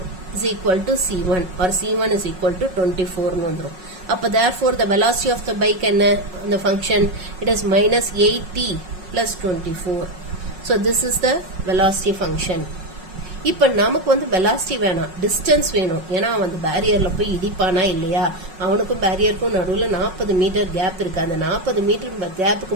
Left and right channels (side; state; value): left; late; 5.4 ms